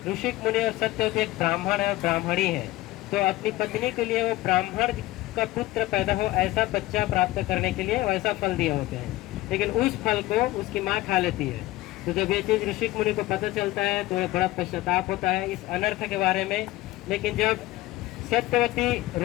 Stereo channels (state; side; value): quieter; right; 17.7 dB